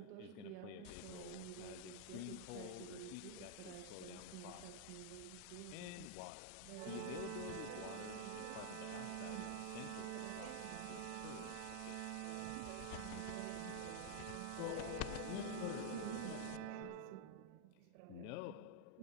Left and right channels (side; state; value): both; different; correlation 0.00